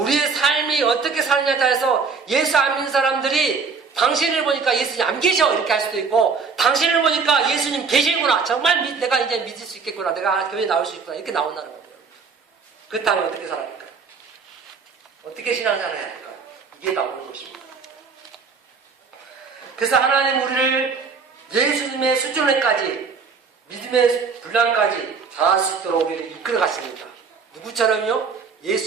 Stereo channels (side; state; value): left; quieter; 5.2 dB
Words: 삶이 어떻게 사느냐에 따라서 예수 안 믿는 사람들이 당신을 보니까 예수님 안 계셔 이렇게 할 수도 있고, 당신을 보니까 예수님 계시구나, 정말 내가 이제 믿을 수 있겠구나, 내가 교회에 나올 수 있구나, 이렇게 나온다는 거예요. 그렇다면 어떻게 살아야 할까요? 어떻게 신앙생활을 해야 할까요? 이게 나오는 것입니다. 그래서 하나님 우리를 예수님의 수준에까지, 믿음의 분량까지 자할 수 있도록 우리를 이끌어 가십니다. 누구처럼요?